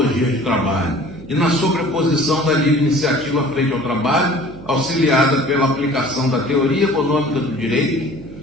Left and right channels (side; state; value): right; noise; hum, 16 dB below the sound